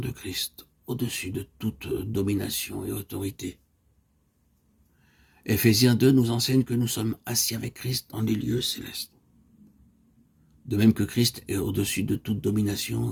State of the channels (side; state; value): both; identical; correlation 1.00